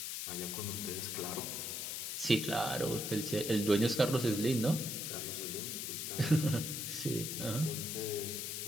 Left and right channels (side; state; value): left; noise; hiss, 4 dB below the sound